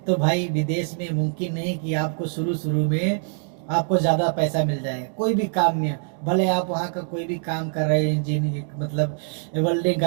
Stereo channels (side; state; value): left; silent; 63 dB below the other